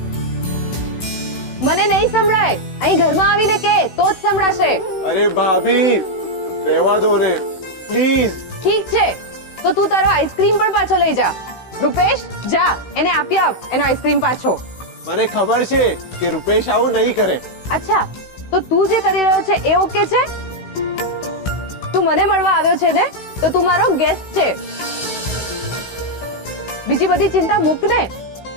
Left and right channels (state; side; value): late; right; 16 ms